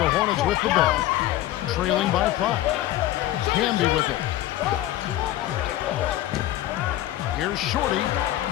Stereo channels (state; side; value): quieter; right; 14.5 dB